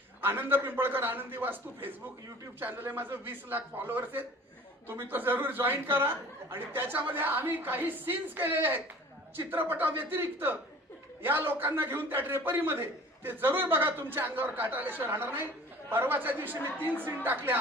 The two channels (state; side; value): normal; both; correlation 0.45